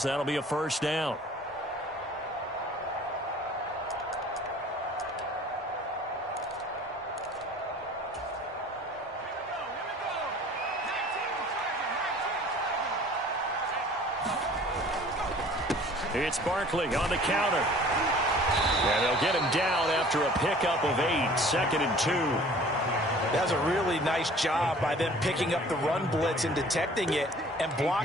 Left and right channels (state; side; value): normal; both; correlation 0.49